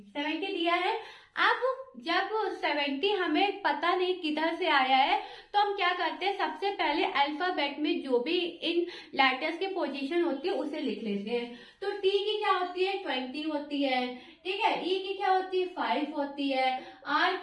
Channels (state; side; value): identical; both; correlation 1.00